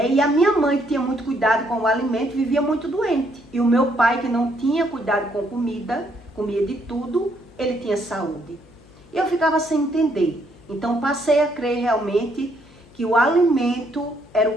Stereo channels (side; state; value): left; noise; hum, 25 dB below the sound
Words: E a minha mãe, que tinha muito cuidado com o alimento, vivia muito doente. E o meu pai, que não tinha cuidado com comida, comia de tudo, ele tinha saúde. E eu ficava sem entender. Então passei a crer realmente que o alimento era o